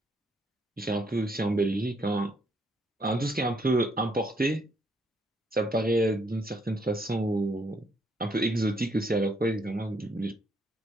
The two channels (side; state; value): both; normal; correlation 0.71